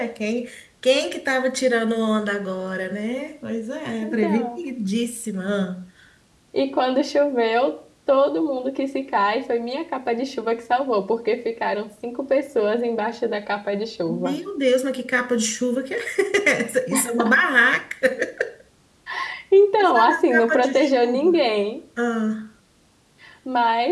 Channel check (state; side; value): identical; both; correlation 1.00